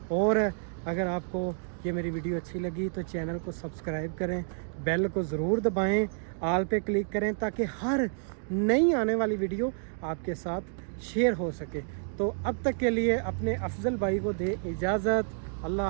और अगर आपको ये मेरी वीडियो अच्छी लगी तो चैनल को सब्सक्राइब करें, बेल को ज़रूर दबाएं, आल पे क्लिक करें ताकि हर नई आने वाली वीडियो आपके साथ शेयर हो सके। तो अब तक के लिए अपने अफजल भाई को दे इजाज़त।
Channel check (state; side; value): silent; left; digital silence